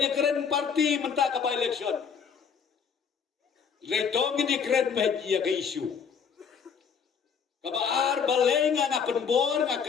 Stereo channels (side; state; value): right; quieter; 6.6 dB